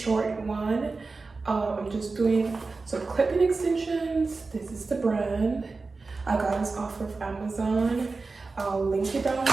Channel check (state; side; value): quieter; left; 3.9 dB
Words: one. I'm just doing some clipping extensions. This is the brand. I got this off of Amazon. I'll link it down